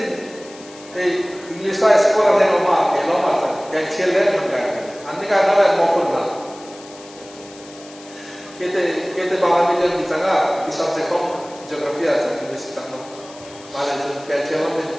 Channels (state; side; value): noise; left; hiss, 20 dB below the sound